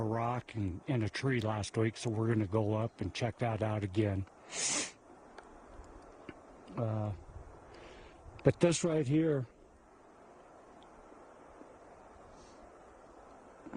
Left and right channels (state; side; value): identical; both; correlation 1.00